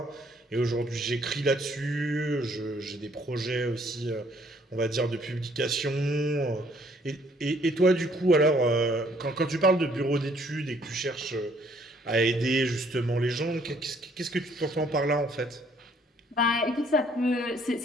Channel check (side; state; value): both; normal; correlation 0.63